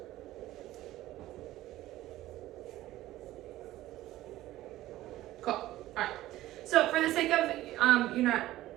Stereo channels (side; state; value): left; quieter; 15.5 dB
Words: Cool. All right. So for the sake of you not